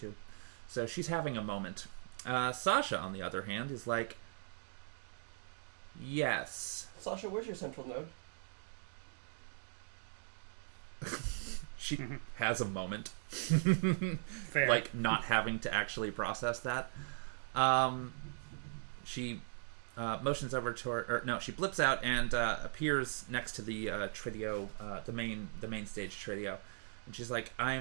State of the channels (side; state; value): left; silent; digital silence